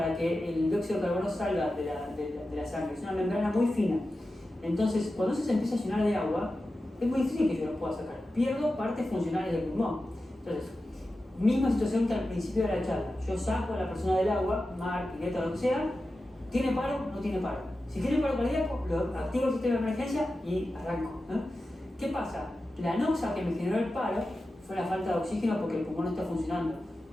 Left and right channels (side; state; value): both; normal; correlation 0.93